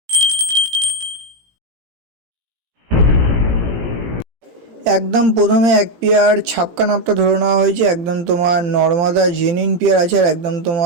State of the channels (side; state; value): left; late; 18 ms